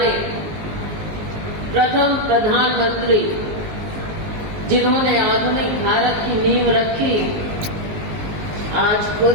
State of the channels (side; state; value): left; late; 19 ms